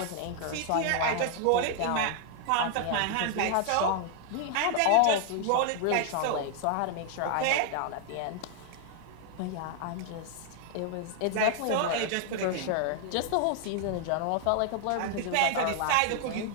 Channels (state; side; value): different; both; correlation 0.00